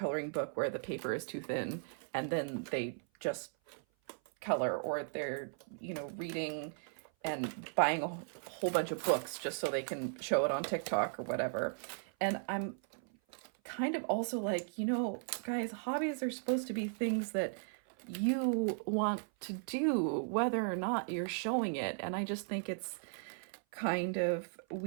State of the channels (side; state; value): left; silent; 53 dB below the other